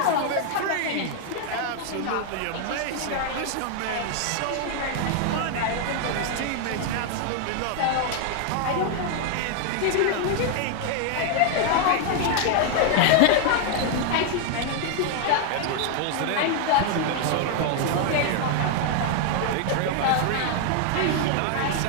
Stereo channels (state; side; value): different; both; correlation 0.00